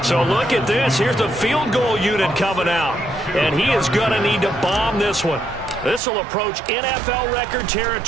So look at this. Here's the field goal unit coming out. And he is going to need to bomb this one. This will approach NFL record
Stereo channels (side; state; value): left; drops out; at 6.0 s